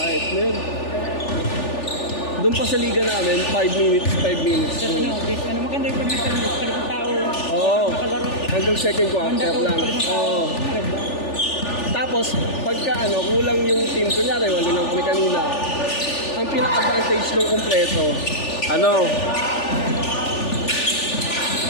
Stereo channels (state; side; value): late; right; 3.4 ms